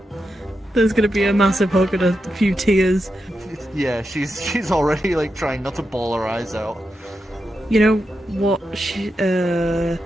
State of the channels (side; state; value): both; normal; correlation 0.87